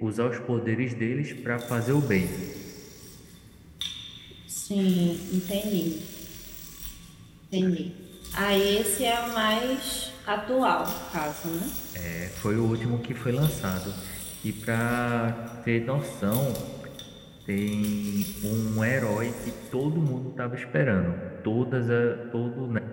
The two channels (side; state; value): both; identical; correlation 1.00